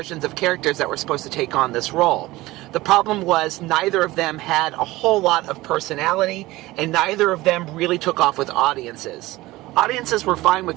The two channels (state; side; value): quieter; left; 18.8 dB